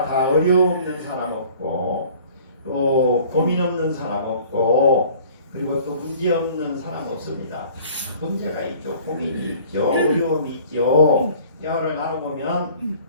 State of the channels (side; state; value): both; inverted; correlation -0.51